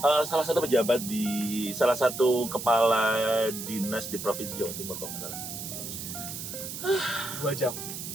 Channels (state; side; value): noise; right; hiss, 8 dB below the sound